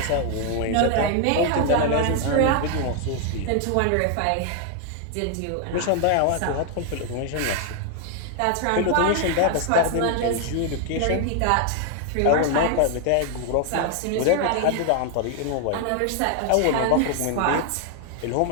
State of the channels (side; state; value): both; different; correlation 0.00